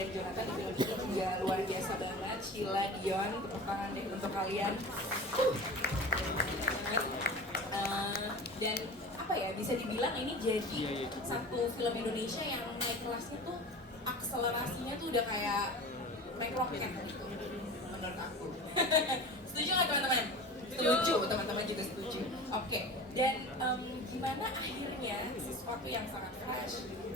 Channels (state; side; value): normal; both; correlation 0.35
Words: Jonathan di film ini juga luar biasa banget. Sheila, Dion, tepuk tangan deh untuk kalian. Dan apa ya, bisa dibilang ini jadi satu film Indonesia yang naik kelasnya tuh, akselerasinya tuh udah kayak naik roket gitu menurut aku. Setuju nggak teman-teman? Setuju, teman-teman juga setuju. Oke, dan gimana akhirnya sesuatu yang sangat fresh